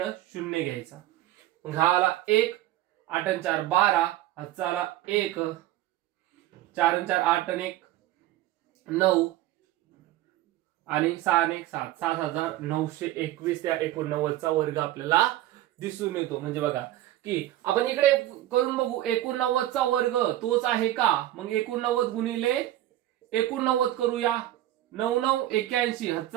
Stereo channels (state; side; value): quieter; left; 14.4 dB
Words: 0 घ्यायचा. मग हा आला 1, 8 आणि 4 12, हाचा आला 1, 4 आणि 4 8 आणि 1 9 आणि 6 आणि 1 7, 7921 त्या 89चा वर्ग आपल्याला दिसून येतो. म्हणजे बघा की आपण इकडे करून बघू 89चा वर्ग तोच आहे का. मग 89 गुणिले 89 करूया. 9 9 81,